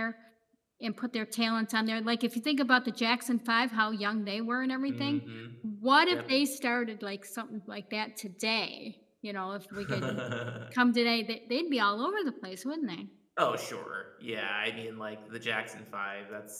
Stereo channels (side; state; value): both; identical; correlation 1.00